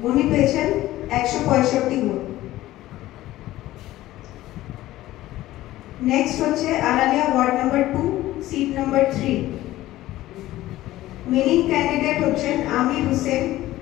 উনি পেয়েছেন 165 ভোট। নেক্সট হচ্ছে Aralia ward number 2, seat number 3, winning candidate হচ্ছেন আমির হোসেন,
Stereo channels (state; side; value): quieter; right; 15.7 dB